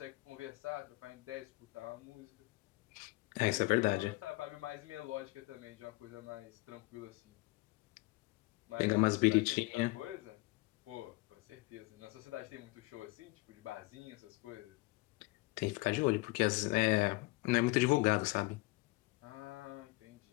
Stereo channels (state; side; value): quieter; right; 23.2 dB